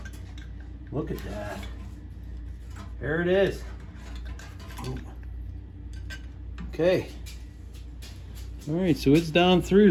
Look at that. There it is. Oh. Okay. All right, so it's down through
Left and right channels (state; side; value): identical; both; correlation 1.00